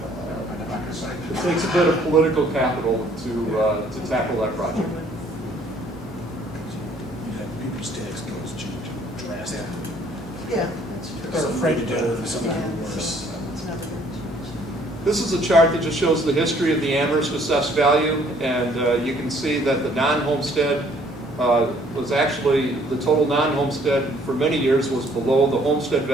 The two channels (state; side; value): normal; both; correlation 0.61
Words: It takes a bit of political capital to tackle that project. People's tax bills change drastically. Yeah, that's true. They're afraid to do it for something Yeah, worse. so it's never going to change. This is a chart that just shows the history of the Amherst assessed value, and you can see that the non-homestead was actually, the total non-homestead for many years was below the homestead